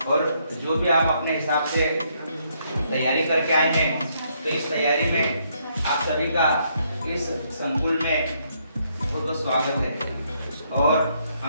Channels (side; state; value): both; inverted; correlation -0.72